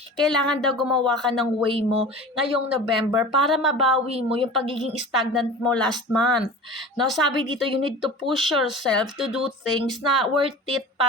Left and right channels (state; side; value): normal; both; correlation 0.37